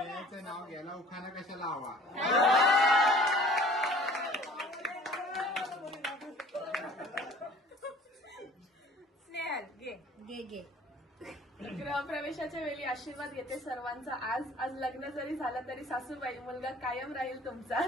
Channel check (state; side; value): normal; both; correlation 0.50